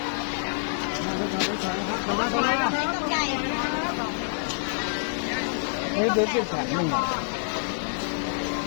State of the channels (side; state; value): right; silent; digital silence